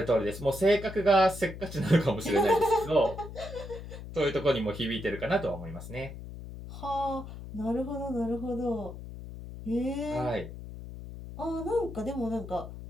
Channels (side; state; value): left; noise; hum, 11 dB below the sound